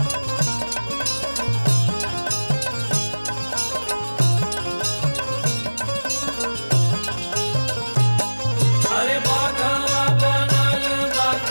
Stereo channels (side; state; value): both; inverted; correlation -1.00